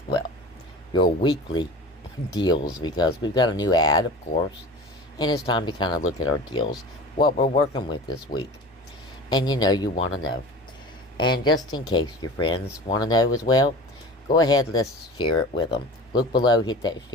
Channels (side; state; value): both; normal; correlation 0.38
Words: your weekly deals because we've got a new ad, of course, and it's time to kind of look at our deals, what we're working with this week. And you want to know. And just in case your friends want to know as well, go ahead, let's share it with them. Look below, hit that